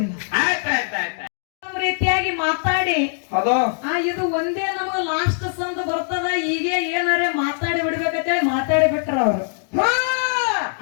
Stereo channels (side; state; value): right; silent; digital silence